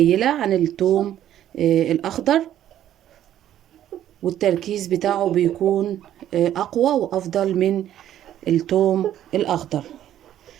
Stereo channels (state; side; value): quieter; left; 11.6 dB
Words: عن التوم الاخضر، والتركيز بتاعه بيكون اقوى وافضل من التوم الاخضر.